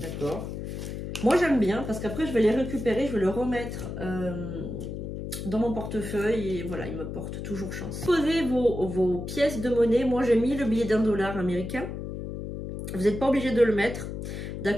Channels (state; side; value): noise; left; hum, 6 dB below the sound